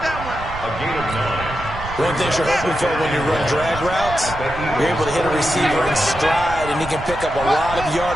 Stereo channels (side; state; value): right; noise; rumble, 11 dB below the sound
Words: gain of 9. One thing you're hoping for when you run drag routes, you're able to hit a receiver in stride, and he can pick up a lot of